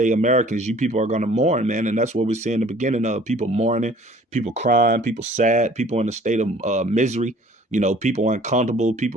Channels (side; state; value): both; normal; correlation 0.53